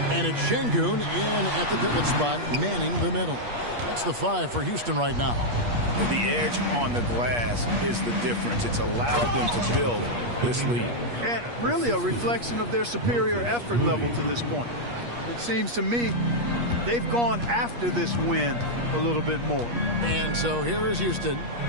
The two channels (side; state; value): left; late; 8.4 ms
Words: And it's Şengün in at the pivot spot, manning the middle. That's the 5 for Houston right now. The edge on the glass is the difference. It's allowed them to build this lead. And really a reflection of their superior effort level to this point. It seems to me they've gone after this win a little bit more. And so here is Houston.